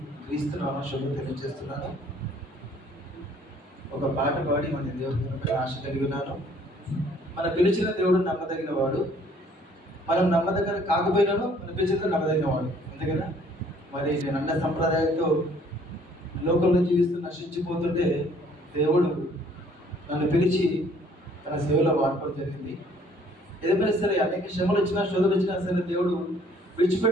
క్రీస్తు నామ శుభం తెలియజేస్తున్నాను. ఒక పాట పాడి మన దేవుడి ఆశ కలిగి ఉన్నాను. మన పిలిచిన దేవుడు నమ్మదగిన వాడు, మనం నమ్మదగిన కాకపోయినాను మన పిలిచిన నమ్మదగిన వాడు, అంతే కదా. మరి నేను అన్న సంప్రదాయంతో లోకంలో జీవిస్తూ నశించిపోతుంటే దేవుడు నన్ను పిలిచి తన సేవలో వాడుకోవడం జరిగింది. ఏదైనా సరే అనేక శ్రమలు వచ్చినా శోధనలు వచ్చినా సరే దేవుడు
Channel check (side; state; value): both; normal; correlation 0.59